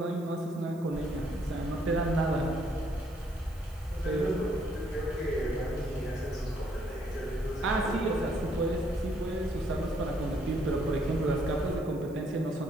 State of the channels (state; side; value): noise; right; hiss, 26 dB below the sound